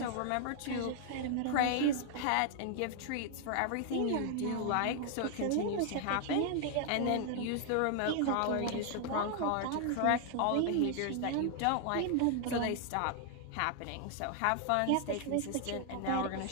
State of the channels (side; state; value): both; different; correlation 0.00